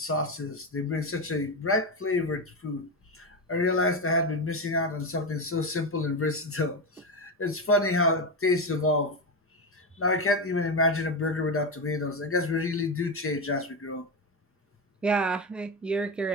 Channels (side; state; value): both; normal; correlation 0.14